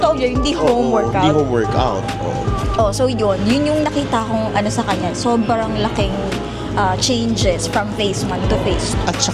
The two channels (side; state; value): both; identical; correlation 1.00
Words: yun, hindi home Oo, workout. Hindi home workout. Oo. Oh, so yun yung nakita kong ano sa kanya. Sobrang laking changes from phase 1 to phase 2. At